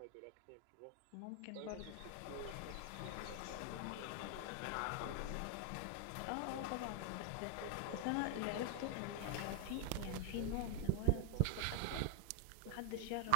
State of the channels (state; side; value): different; both; correlation 0.00